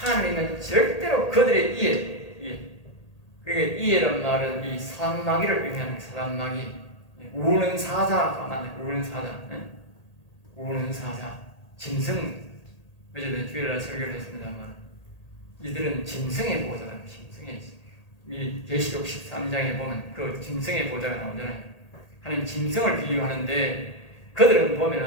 절대로 그들에 의해, 그러니까 이해란 말은 이 사단마귀를 의미하는 사단마귀, 우는 사자가 맞네. 우는 사자, 우는 사자, 짐승. 어제는 주일날 설교를 했습니다만 이들은 짐승의 보좌다. 짐승의, 이 계시록 13장에 보면 그 짐승의 보좌가 나오잖아요. 하나님 짐승을 비유하는데 그들은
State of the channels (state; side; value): late; right; 1.8 ms